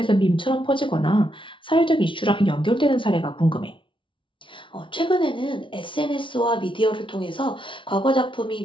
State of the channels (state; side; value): late; right; 0.25 ms